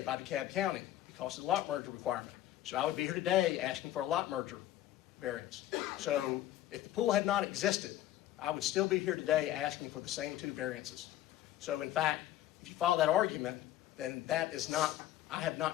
by DeKalb County because of the lot merger requirement. So I would be here today asking for a lot merger variance. So if the pool had not existed, I would still be here today asking for the same 2 variances. So in fact, if you follow that argument, then that is not, I have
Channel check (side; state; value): right; quieter; 13.5 dB